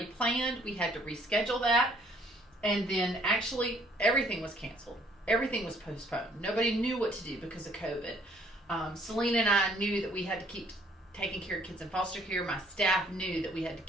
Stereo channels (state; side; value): normal; both; correlation 0.62